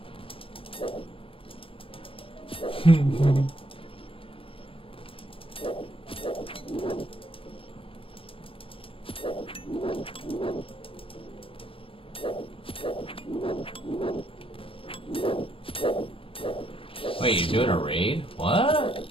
Wait, you're doing a raid? What?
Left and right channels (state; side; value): late; right; 0.26 ms